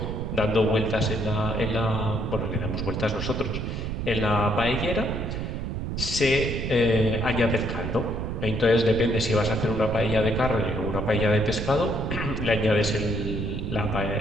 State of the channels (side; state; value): right; noise; rumble, 3 dB below the sound